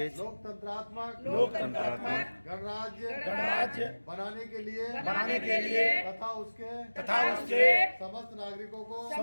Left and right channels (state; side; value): inverted; both; correlation -1.00